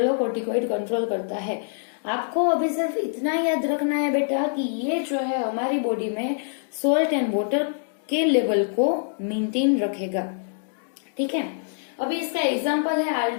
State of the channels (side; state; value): right; silent; digital silence